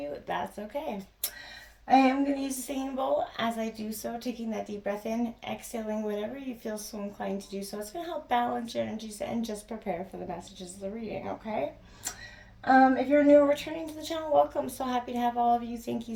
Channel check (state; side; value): identical; both; correlation 1.00